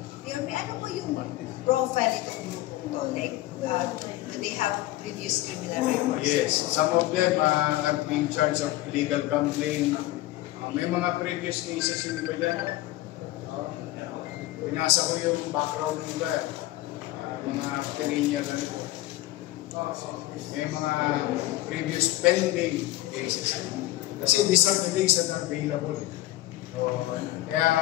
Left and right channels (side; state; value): right; quieter; 16.7 dB